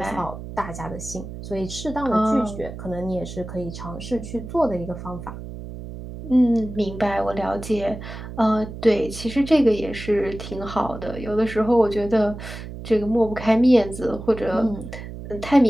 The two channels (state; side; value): noise; right; hum, 11 dB below the sound